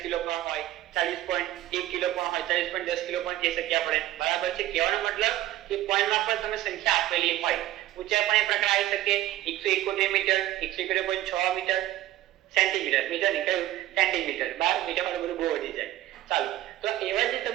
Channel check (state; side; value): quieter; left; 14.5 dB